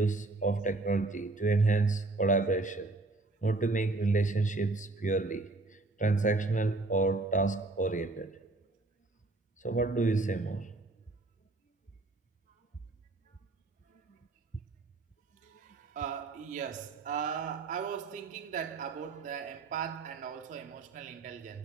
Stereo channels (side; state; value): left; quieter; 3.2 dB